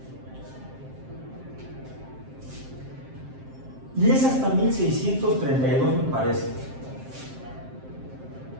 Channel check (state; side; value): late; left; 7.6 ms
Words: Y es hasta 1632, me parece.